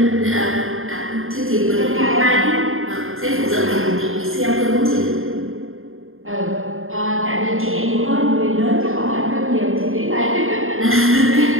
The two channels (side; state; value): left; late; 0.60 ms